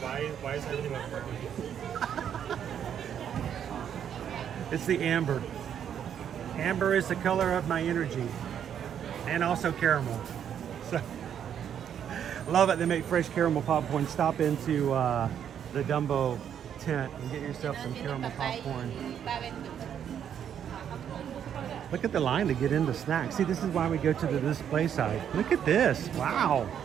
why is everything like purple? It's the amber. Amber is the color of my energy. And also caramel. So, love it. They make fresh caramel popcorn. Stop into the Dumbo tent and get yourself some caramel popcorn. Look at the line to get into snacks. See, this is why we go to the display side. Look at this. Wow.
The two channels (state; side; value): quieter; left; 9.0 dB